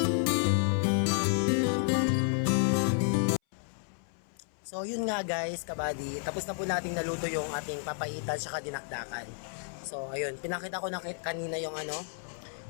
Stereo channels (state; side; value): silent; right; 57 dB below the other